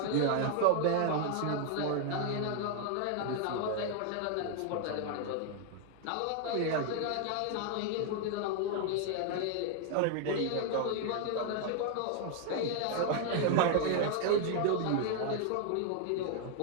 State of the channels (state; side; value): different; both; correlation 0.00